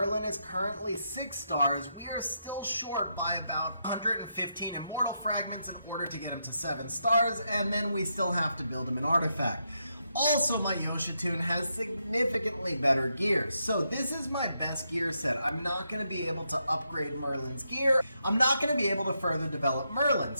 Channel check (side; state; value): both; inverted; correlation -0.81